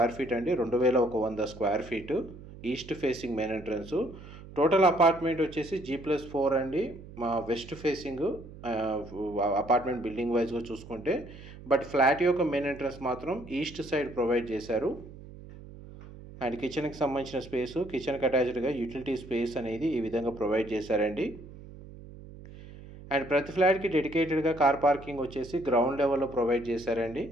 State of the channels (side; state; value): right; noise; hum, 16 dB below the sound